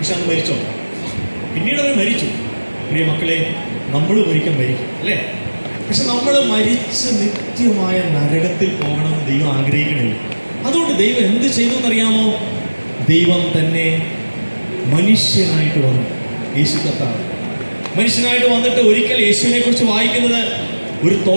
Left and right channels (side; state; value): both; inverted; correlation -1.00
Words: അന്ന് മരിച്ചോ? പിന്നീട് അവർ മരിച്ചു. പ്രിയ മക്കളെ, നമ്മൾ ഒരിക്കൽ മരിക്കും അല്ലേ? പക്ഷെ നമ്മൾ മരിച്ച് നിത്യമായ നരകത്തിൽ പോകണമെന്ന് ദൈവം ആഗ്രഹിക്കണില്ല. അതുകൊണ്ട് ദൈവം എന്ത് ചെയ്തു എന്നറിയാമോ? ദൈവം തന്നെ മനുഷ്യനായിട്ട് വന്നു. യേശു കർത്താവ് മനുഷ്യനായിട്ട് വന്നിട്ട് ഒരിക്കൽ യേശുവിനെ കുറിച്ച് വായിക്കുന്നത്, ഒരു